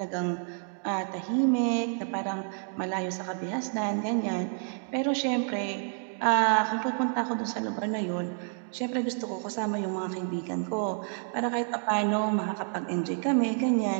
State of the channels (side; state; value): left; silent; 58 dB below the other